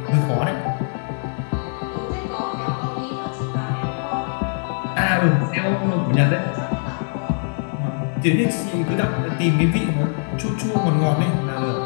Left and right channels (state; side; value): silent; right; digital silence